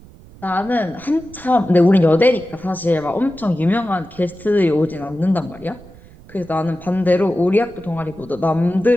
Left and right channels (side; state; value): right; noise; rumble, 21 dB below the sound